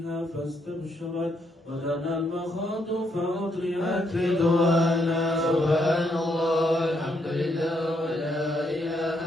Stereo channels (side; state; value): both; normal; correlation 0.76